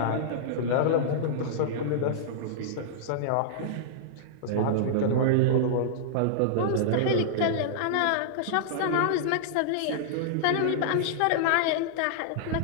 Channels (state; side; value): different; both; correlation -0.02